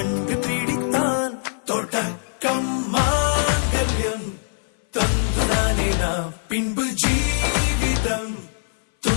பிடித்தான். தொடக்கம் மாங்கல்யம் தந்துனானே நாம் பின்பு ஜீவிதம்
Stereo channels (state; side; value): silent; right; 59 dB below the other